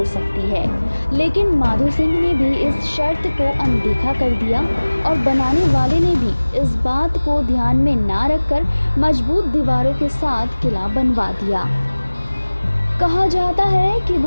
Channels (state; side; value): inverted; both; correlation -1.00